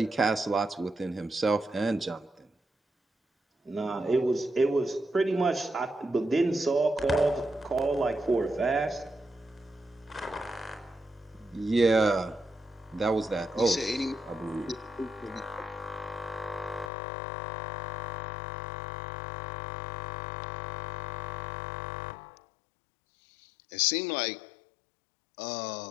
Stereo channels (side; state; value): right; drops out; at 16.9 s